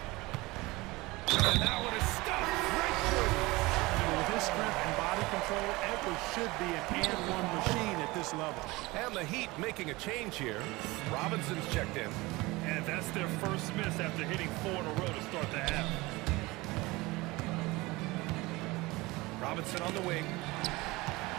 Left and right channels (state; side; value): quieter; left; 21.9 dB